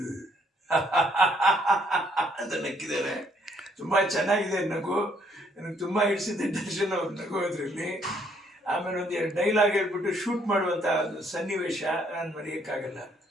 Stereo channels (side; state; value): both; normal; correlation 0.67